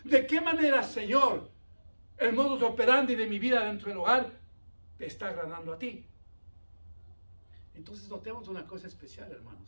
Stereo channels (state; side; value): inverted; both; correlation -1.00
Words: ¿De qué manera, Señor, el modus operandi de mi vida dentro del hogar te está agradando a ti? Entonces notemos una cosa especial,